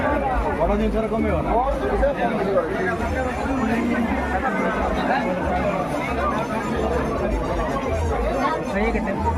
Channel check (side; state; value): both; identical; correlation 1.00